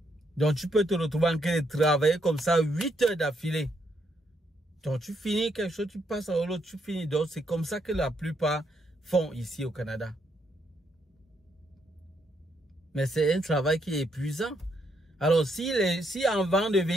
Donc, tu peux te retrouver en train de travailler comme ça 8 heures d'affilée. Donc, tu finis quelque chose, tu passes à l'autre, tu finis d'autres. C'est comme ça que la plupart font ici au Canada. Mais c'est un travail qui est épuisant. Alors, si avant de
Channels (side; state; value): both; normal; correlation 0.76